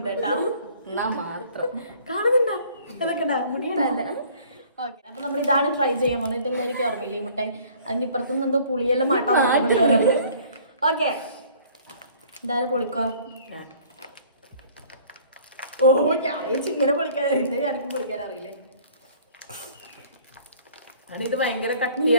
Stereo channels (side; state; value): both; inverted; correlation -0.54